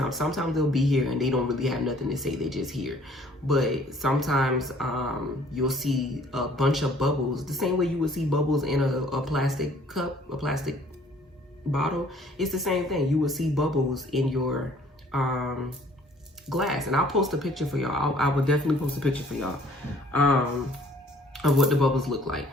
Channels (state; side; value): normal; both; correlation 0.57